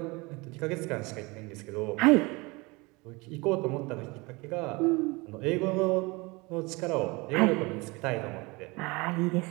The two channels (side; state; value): left; quieter; 25.3 dB